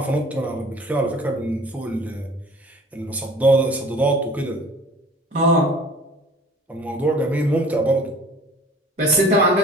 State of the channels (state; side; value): normal; both; correlation 0.47